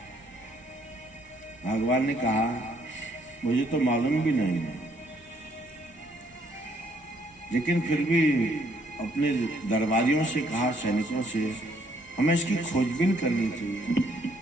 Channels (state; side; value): normal; both; correlation 0.67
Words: भगवान ने कहा मुझे तो मालूम भी नहीं है, लेकिन फिर भी अपने दरबारियों से कहा, सैनिकों से, हमें इसकी खोजबीन करनी चाहिए।